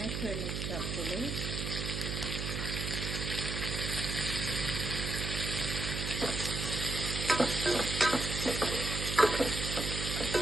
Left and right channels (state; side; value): noise; right; hum, 3 dB below the sound